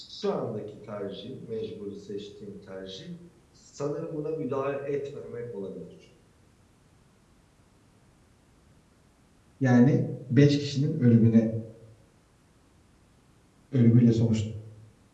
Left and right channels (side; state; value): both; identical; correlation 1.00